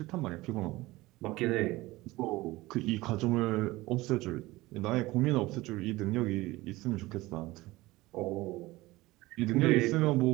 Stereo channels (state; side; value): quieter; left; 19.5 dB